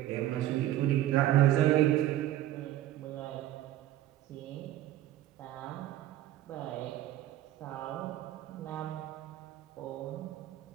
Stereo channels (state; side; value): quieter; left; 13.7 dB